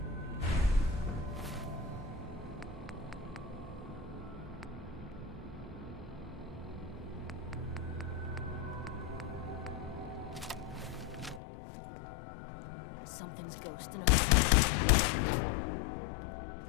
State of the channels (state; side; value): drops out; right; at 11.4 s